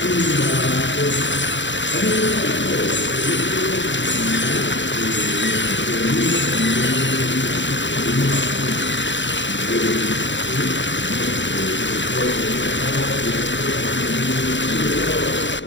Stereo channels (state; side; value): late; right; 0.54 ms